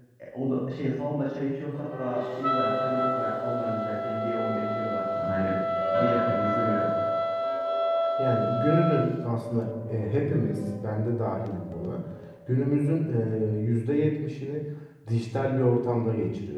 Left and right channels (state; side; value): identical; both; correlation 1.00